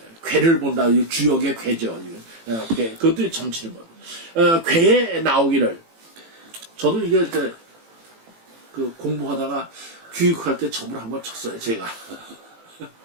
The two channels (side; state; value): left; late; 18 ms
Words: 괴를 본다. 주역의 괴죠. 그것도 점치는 거예요. 괴에 나오기를 저도 이게 공부하다가 교육할 때 점을 한번 쳤어요. 제가